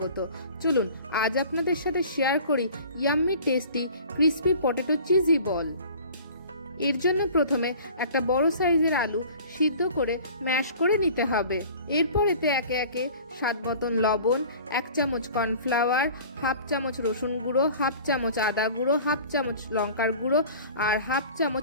চলুন আজ আপনাদের সাথে শেয়ার করি yummy tasty crispy potato cheesy ball. এর জন্য প্রথমে একটা বড় সাইজের আলু সিদ্ধ করে ম্যাশ করে নিতে হবে। এরপর এতে একে একে স্বাদ মতন লবণ, 1 চামচ কর্নফ্লাওয়ার, হাফ চামচ রসুন গুঁড়ো, হাফ চামচ আদা গুঁড়ো, হাফ চামচ লঙ্কার গুঁড়ো আর হাফ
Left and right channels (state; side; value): inverted; both; correlation -0.45